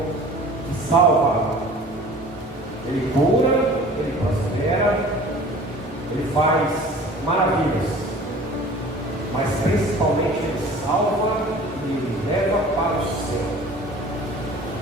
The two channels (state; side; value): normal; both; correlation 0.45